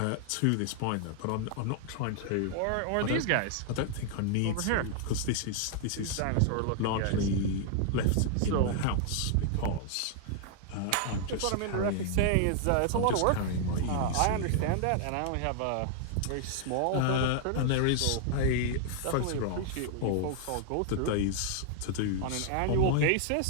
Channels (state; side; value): different; both; correlation 0.00